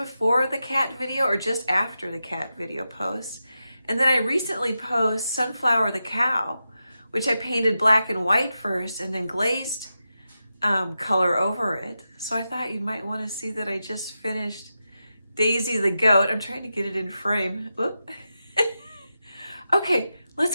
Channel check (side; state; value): both; inverted; correlation -0.90